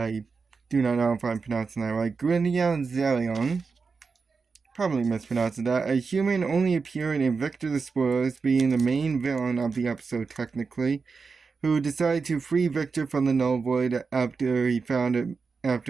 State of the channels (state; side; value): quieter; left; 4.9 dB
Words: do not know if I'm pronouncing that right. Gyula Xarion. Probably mispronouncing that. A human only appearing in Victor the Spoilers, being the main villain of the episode technically, who decided to free Victor from the Null Void after